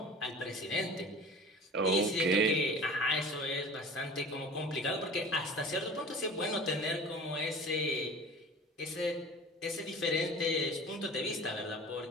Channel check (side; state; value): both; normal; correlation 0.41